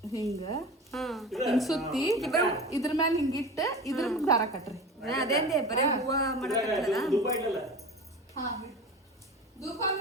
ಹಿಂಗ ಹಾ ಹಿಂಗ್ ಸುತ್ತಿ ಇದ್ರ ಮ್ಯಾಲ ಹಿಂಗಿಟ್ಟ ಇದ್ರ ದಾರ ಕಟ್ರಿ ಅದೇಂದೆ ಬರೇ ಹೂವ ಮಾಡಕತ್ತಲ್ಲ ಧೂಪ ಇಡಲ್ಲ. ಹಾ ಧೂಪ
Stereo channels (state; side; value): normal; both; correlation 0.33